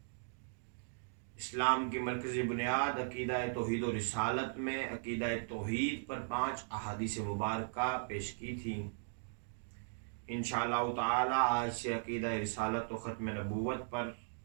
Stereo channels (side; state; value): left; silent; digital silence